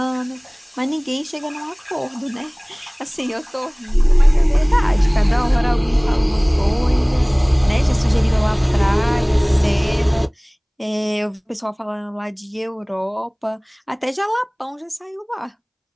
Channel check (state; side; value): identical; both; correlation 1.00